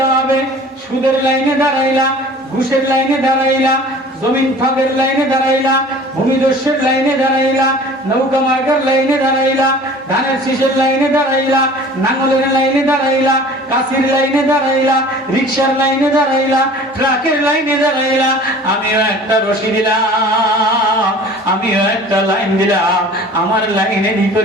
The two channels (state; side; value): normal; both; correlation 0.45